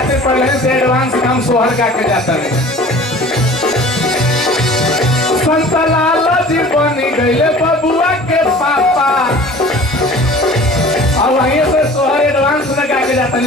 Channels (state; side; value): normal; both; correlation 0.44